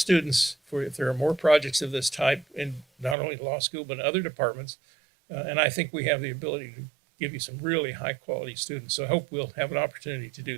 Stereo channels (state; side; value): drops out; left; at 3.2 s